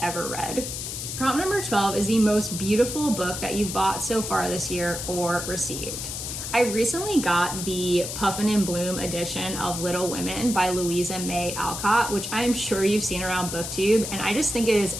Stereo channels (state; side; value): noise; left; hiss, 6 dB below the sound